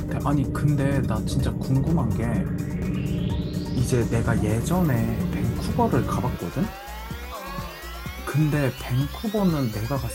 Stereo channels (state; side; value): identical; both; correlation 1.00